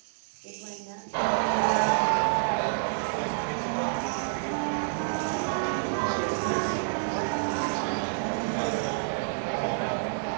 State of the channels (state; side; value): silent; left; digital silence